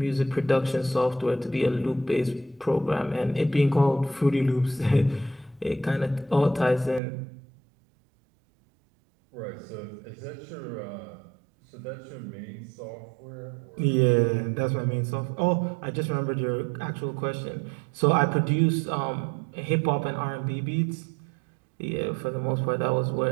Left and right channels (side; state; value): left; drops out; at 7.0 s